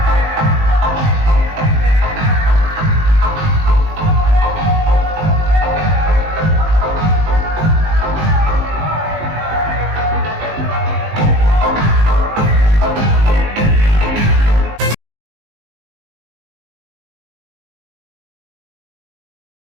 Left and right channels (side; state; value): left; late; 19 ms